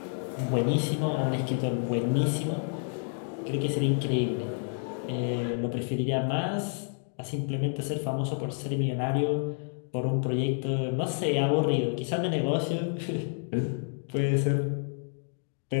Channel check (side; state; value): right; silent; 58 dB below the other